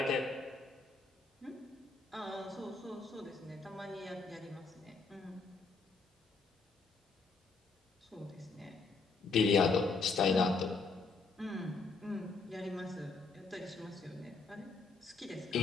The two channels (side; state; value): right; quieter; 4.1 dB